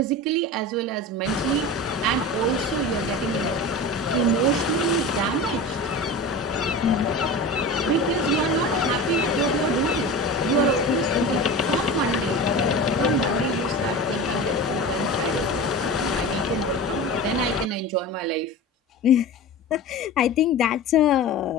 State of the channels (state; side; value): normal; both; correlation 0.31